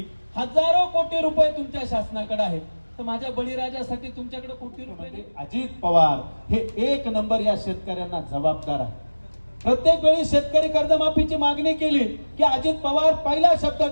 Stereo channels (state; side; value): inverted; both; correlation -1.00